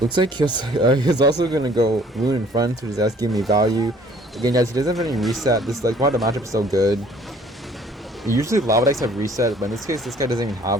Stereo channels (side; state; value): both; normal; correlation 0.55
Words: like he's also gonna go Loon in front, which is that's giving me value. Again, guys, he doesn't have any reset. This like why the matchup is so good. Usually lava decks have reset, but in this case, this guy doesn't even